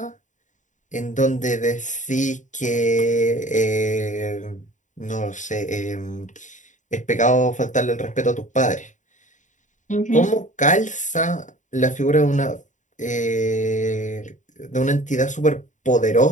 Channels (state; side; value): late; right; 0.36 ms